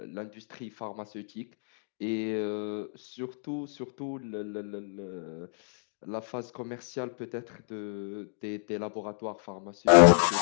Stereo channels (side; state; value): right; silent; digital silence